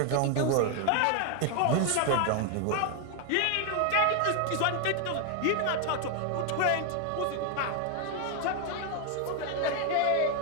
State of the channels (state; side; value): different; both; correlation 0.00